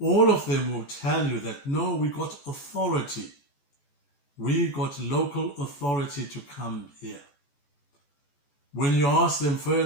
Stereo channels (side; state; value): right; late; 14 ms